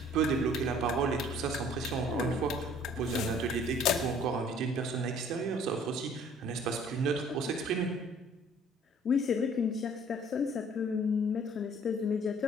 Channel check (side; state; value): both; normal; correlation 0.55